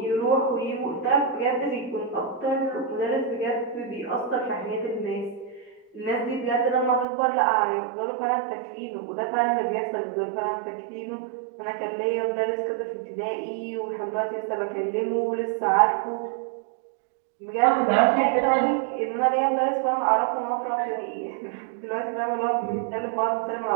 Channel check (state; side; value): drops out; left; at 7.1 s